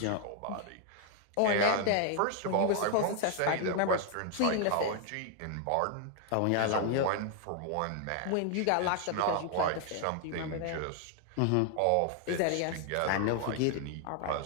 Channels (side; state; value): both; different; correlation 0.00